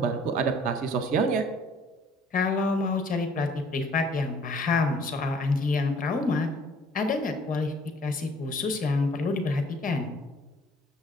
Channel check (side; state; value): both; normal; correlation 0.56